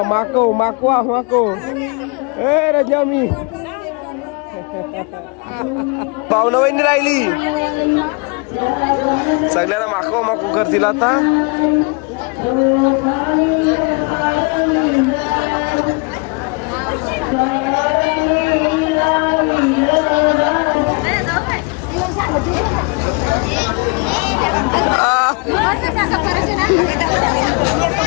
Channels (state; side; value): quieter; right; 31.7 dB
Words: माको माकवा माको ए रजा मी पाहुणा वहिनी राहिली. सगळ्याला माकवा माको करतील आता.